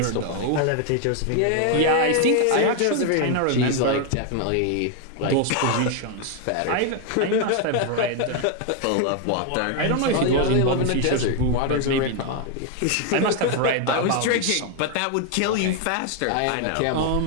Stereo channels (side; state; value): both; different; correlation 0.01